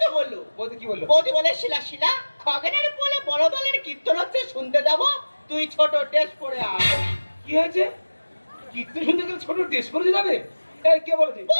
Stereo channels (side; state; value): both; inverted; correlation -1.00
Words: তো বললো। বৌদি কি বললো? বৌদি বলে শিলা শিলা, খগেনের বলে বড় দলের কীর্তন হচ্ছে, শুনতে যাবো, তুই ছোট টেস্ট করে আয়। কি হয়েছে? কীর্তন শুনতে গেলে ছোট ড্রেস পরে যাবে? এই কে বলেছে?